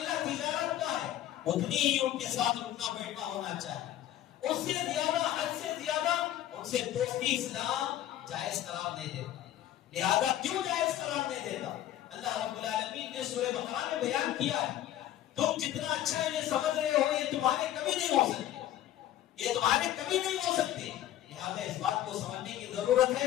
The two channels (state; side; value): quieter; right; 12.5 dB